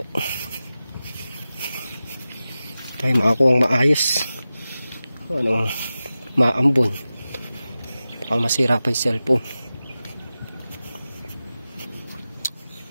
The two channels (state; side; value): inverted; both; correlation -0.95